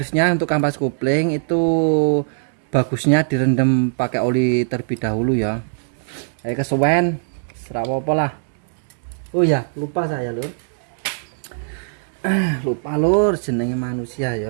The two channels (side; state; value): left; silent; digital silence